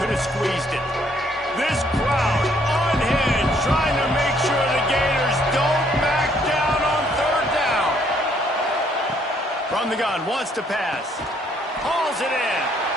could have squeezed it. This crowd unhinged, trying to make sure the Gators don't back down on third down. From the gun, wants to pass. Hauls it in.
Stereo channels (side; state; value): both; normal; correlation 0.66